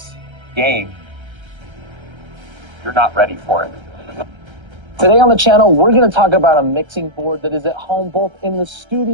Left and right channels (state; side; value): late; left; 1.3 ms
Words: game, you're not ready for it. Today on the channel, we're going to talk about a mixing board that is at home both in the